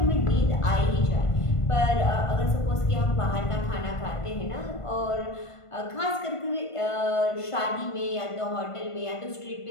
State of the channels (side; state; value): right; late; 1.5 ms